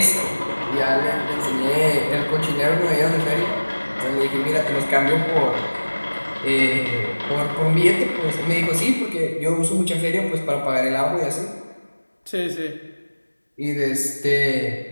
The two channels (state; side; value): inverted; both; correlation -1.00